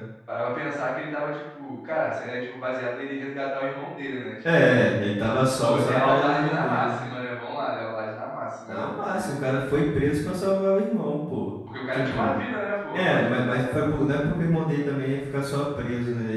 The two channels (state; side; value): identical; both; correlation 1.00